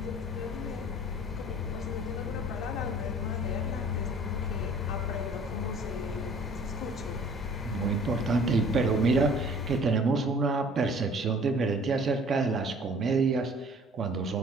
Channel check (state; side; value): normal; both; correlation 0.51